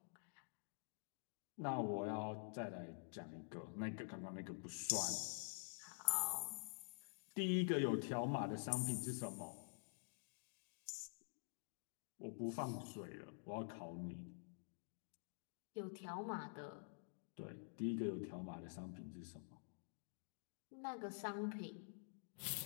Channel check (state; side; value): silent; right; digital silence